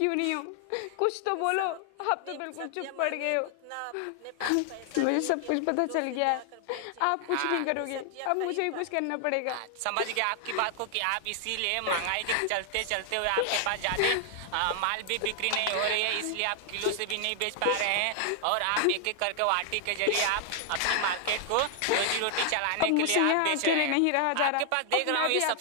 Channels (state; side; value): different; both; correlation 0.00